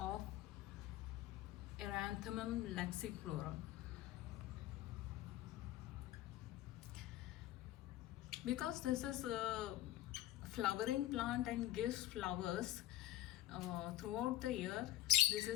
Erranthmum laxiflorum. Because this is a flowering plant and gives flowers throughout the year, this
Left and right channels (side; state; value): right; quieter; 14.5 dB